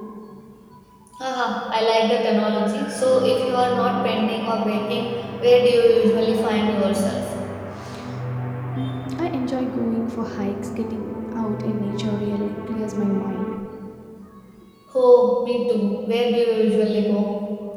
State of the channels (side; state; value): both; identical; correlation 1.00